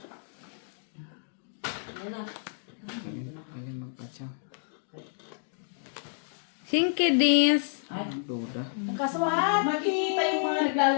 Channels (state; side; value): silent; right; digital silence